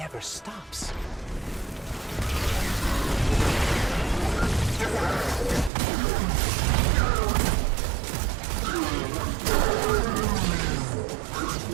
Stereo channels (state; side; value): drops out; left; at 5.7 s